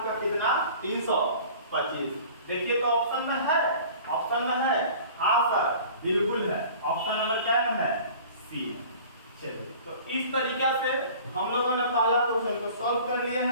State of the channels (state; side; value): inverted; both; correlation -0.45